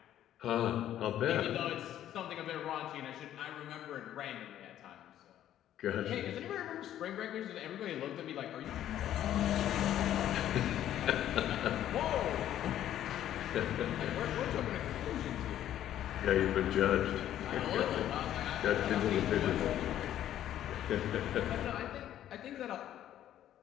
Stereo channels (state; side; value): quieter; right; 11.7 dB